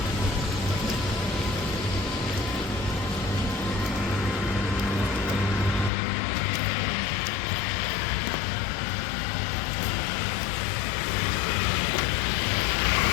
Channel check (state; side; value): drops out; right; at 5.9 s